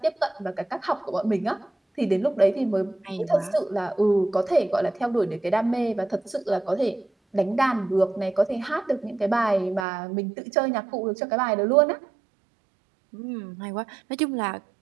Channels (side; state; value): left; drops out; at 9.9 s